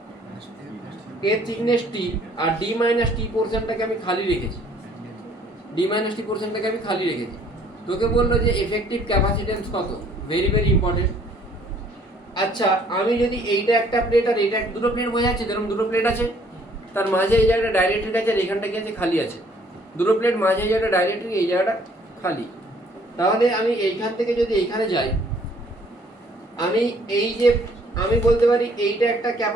এর থিকনেস টি, আর ডি মাইনাস টি পোর্শনটাকে আমি খালি রেখেছি, ডি মাইনাস টি পোর্শনটাকে আমি খালি রেখেছি। তোকে বললো যে এফেক্টিভ ক্যাপাসিটেন্স কত, ভেরি ভেরি ইম্পর্টেন্ট। আচ্ছা, আমি যদি এইটা একটা প্লেট আর এইটা দুটো প্লেট বোঝা যাচ্ছে, যেরকম দুটো প্লেট আছে, তার মাঝে এই জায়গাটা ডাইলেকট্রিক আছে আর এখানটা কি আছে, খালি আছে। দুটো প্লেট মাঝে এই জায়গাটা ডাইলেকট্রিক, এই জায়গাটা খালি। তাহলে আমি এইখান থেকে যদি এইখানে যাই, আমি এই যে আমি বলতে পারি এইটা একটা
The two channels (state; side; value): normal; both; correlation 0.60